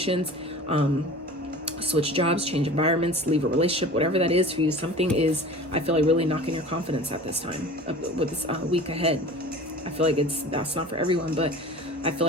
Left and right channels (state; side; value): normal; both; correlation 0.39